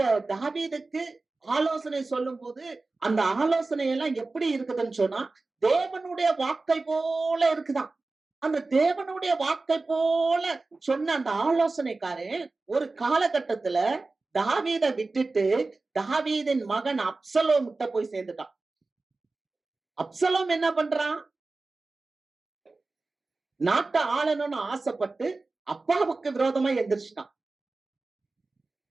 தாவீதுக்கு ஆலோசனை சொல்லும் போது, அந்த ஆலோசனை எல்லாம் எப்படி இருக்குதுன்னு சொன்னா, தேவனுடைய வாக்கை போல இருக்குதாம். அந்த தேவனுடைய வாக்கை போல சொன்ன அந்த ஆலோசனைக்காரன் ஒரு காலகட்டத்துல தாவீதை விட்டுட்டு தாவீதின் மகன் அப்சலோம் கிட்ட போய் சேர்ந்துட்டான். அப்சலோம் என்ன பண்றான், நாட்டை ஆளணும்னு ஆசைப்பட்டு அப்பாவுக்கு விரோதமா எந்திரிச்சிட்டான்.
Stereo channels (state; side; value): quieter; left; 3.5 dB